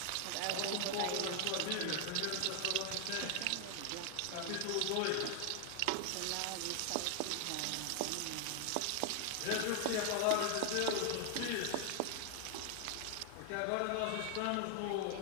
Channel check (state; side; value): different; both; correlation 0.00